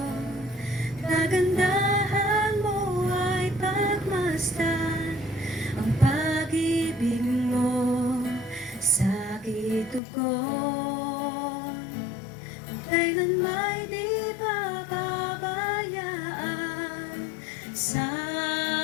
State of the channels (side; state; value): right; drops out; at 10.0 s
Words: Kagandahan mo ay pagmasdan, ang pag-ibig mo sakit tugon. Kailan may di pababayaan, sa